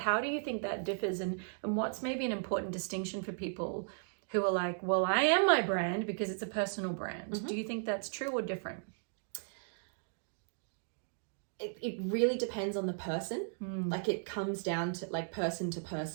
do you think that differs, and what's maybe an important distinction for people who are like, well, I am my brand because it's a personal brand. Do you think that's true or different? It really depends on the person. Like, it comes down to like person to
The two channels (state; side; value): silent; left; digital silence